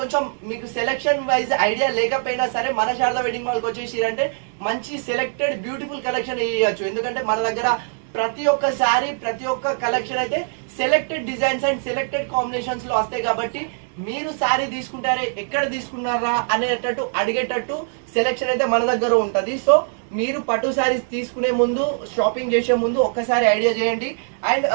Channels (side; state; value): left; silent; digital silence